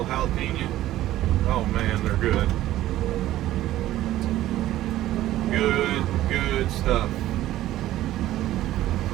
jalapeno. Oh man, they're good. Good stuff.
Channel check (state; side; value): quieter; left; 14.4 dB